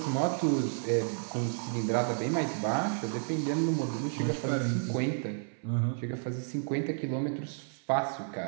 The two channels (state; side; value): silent; left; 57 dB below the other